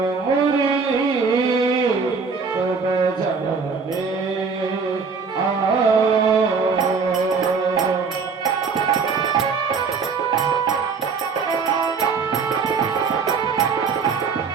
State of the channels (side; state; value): left; quieter; 5.2 dB